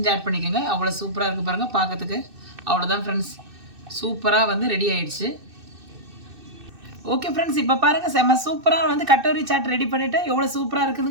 ஆட் பண்ணிக்கோங்க. அவ்வளோ சூப்பராக இருக்குது பாருங்கள் பார்க்கறதுக்கு. அவ்வளோதான் ஃப்ரெண்ட்ஸ், சூப்பராக வந்து ரெடி ஆயிடுச்சு. ஓகே ஃப்ரெண்ட்ஸ், இப்போ பாருங்கள் செம்ம சூப்பராக வந்து கட்டோரி சாட் ரெடி பண்ணிவிட்டு எவ்வளோ சூப்பராக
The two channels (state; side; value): late; left; 2.6 ms